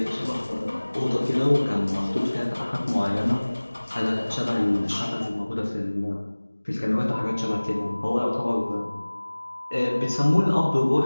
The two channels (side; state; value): both; inverted; correlation -1.00